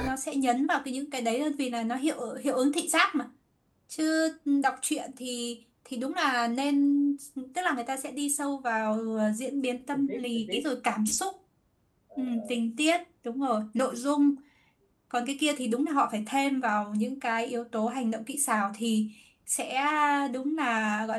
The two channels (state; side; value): identical; both; correlation 1.00